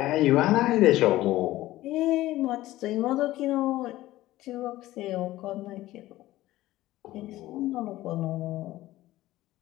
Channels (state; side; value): quieter; right; 16.2 dB